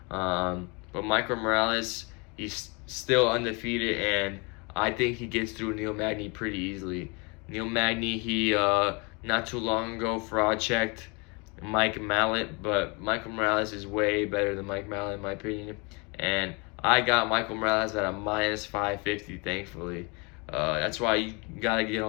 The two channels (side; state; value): right; quieter; 30.3 dB